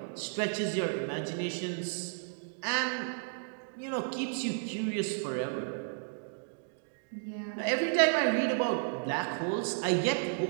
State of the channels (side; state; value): left; silent; digital silence